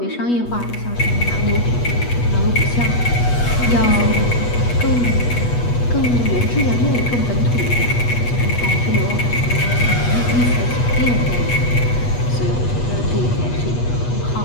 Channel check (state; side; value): late; right; 8.3 ms